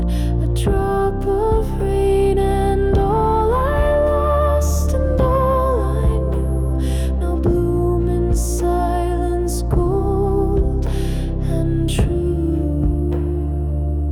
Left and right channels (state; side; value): identical; both; correlation 1.00